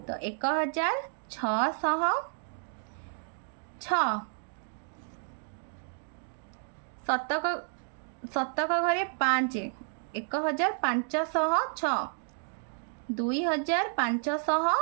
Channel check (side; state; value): left; silent; digital silence